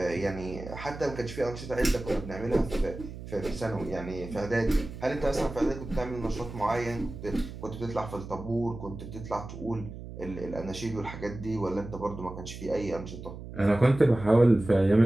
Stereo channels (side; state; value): right; noise; hum, 11 dB below the sound